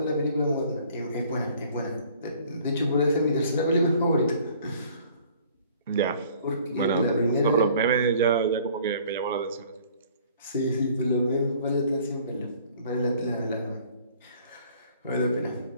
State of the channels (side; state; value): both; inverted; correlation -0.54